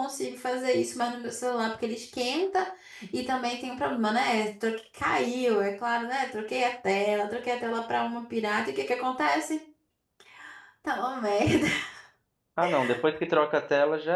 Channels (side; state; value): both; identical; correlation 1.00